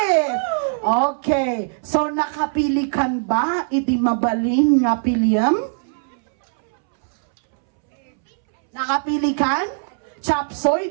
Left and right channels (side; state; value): left; silent; 65 dB below the other